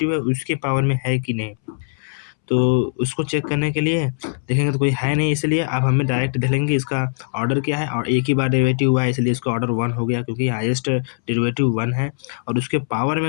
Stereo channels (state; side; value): silent; right; 65 dB below the other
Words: है उसके पावर में है कि नहीं। तो उसको चेक करने के लिए देखेंगे तो कोई है नहीं, इसलिए अब हमें डायरेक्ट देख लेंगे इसका ऑर्डर क्या है, और एक ही बार डेरिवेटिव हुआ है इसलिए इसका ऑर्डर 1 हो गया, क्योंकि हाईएस्ट डेरिवेटिव 1 है और उसके पावर